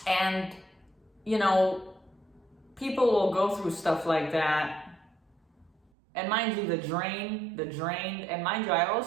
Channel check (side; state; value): left; drops out; at 5.9 s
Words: people will go through stuff like that. And mind you, the drained, and mind you, I